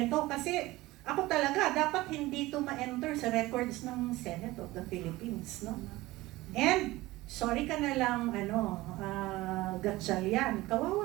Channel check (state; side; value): quieter; left; 18.9 dB